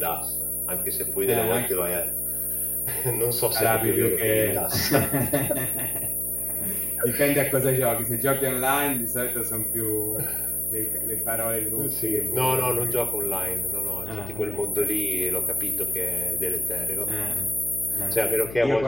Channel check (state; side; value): noise; left; hum, 12 dB below the sound